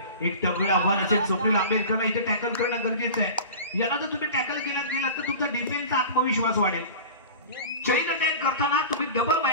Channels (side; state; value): both; inverted; correlation -0.35